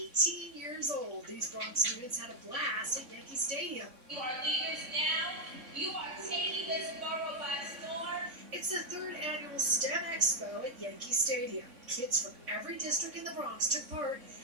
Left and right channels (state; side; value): late; left; 3.6 ms